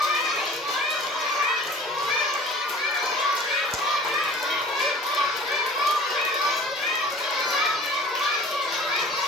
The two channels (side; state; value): both; normal; correlation 0.45